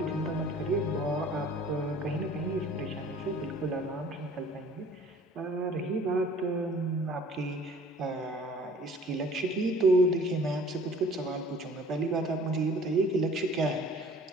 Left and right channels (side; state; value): both; normal; correlation 0.51